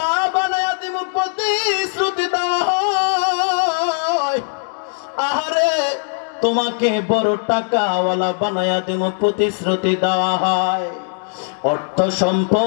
বানায়া দিমু প্রতিশ্রুতি দেওয়া হয়। আহারে তোমাকে বড় টাকাওয়ালা বানায়া দিমু প্রতিশ্রুতি দেওয়া হয়। অর্থ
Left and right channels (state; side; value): silent; right; 62 dB below the other